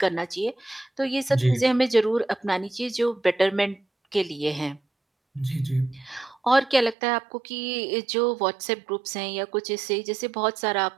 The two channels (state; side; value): drops out; left; at 7.0 s